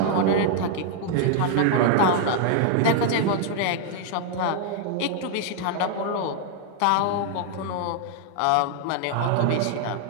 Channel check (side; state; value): both; different; correlation 0.00